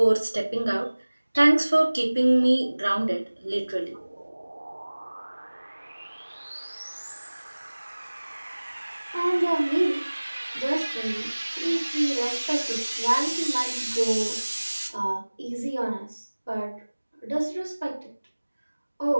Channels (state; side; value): inverted; both; correlation -1.00